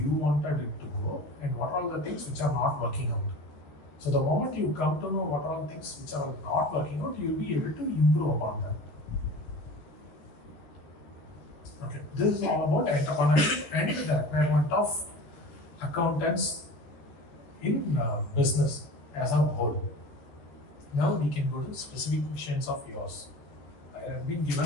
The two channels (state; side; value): late; right; 13 ms